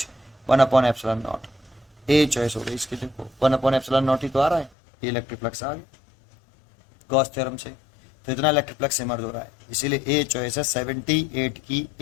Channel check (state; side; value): drops out; right; at 4.7 s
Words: 1/epsilon naught। A choice हो गई इसकी, देखो 1/epsilon naught ही तो आ रहा है, ये इलेक्ट्रिक फ्लक्स आ गया गॉस थ्योरम से। तो इतना इलेक्ट्रिक फ्लक्स इमर्ज हो रहा है, इसीलिए ए चॉइस है 78 की,